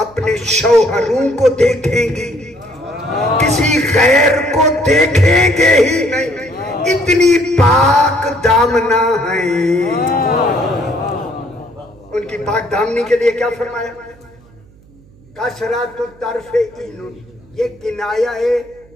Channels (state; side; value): noise; right; hum, 27 dB below the sound